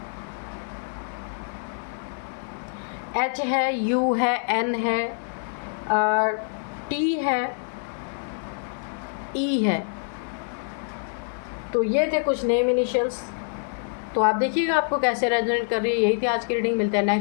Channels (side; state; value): right; silent; 61 dB below the other